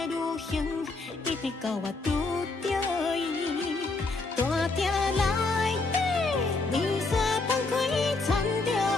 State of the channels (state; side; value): quieter; right; 3.6 dB